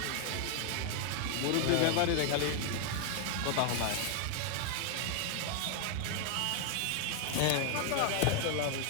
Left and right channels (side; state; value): both; different; correlation 0.00